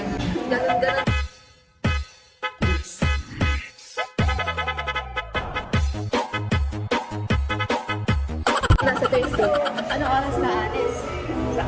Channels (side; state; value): both; identical; correlation 1.00